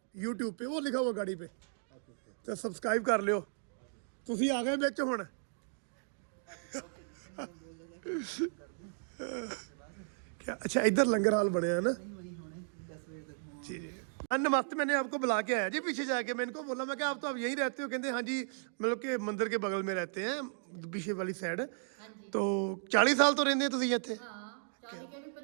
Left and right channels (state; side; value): silent; left; digital silence